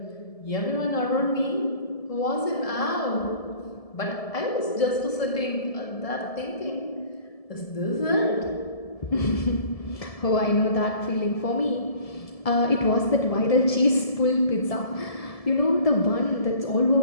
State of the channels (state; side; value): late; right; 1.7 ms